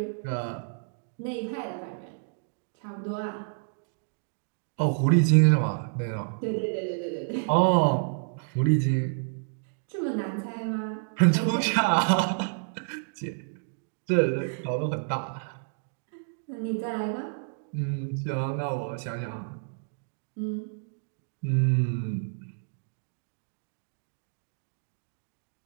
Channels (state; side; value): silent; left; digital silence